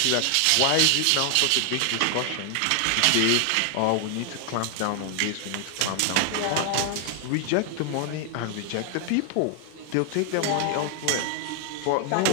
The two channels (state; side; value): different; both; correlation 0.00